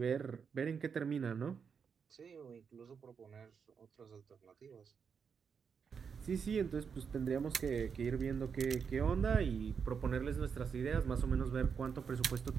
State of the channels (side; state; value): left; quieter; 6.4 dB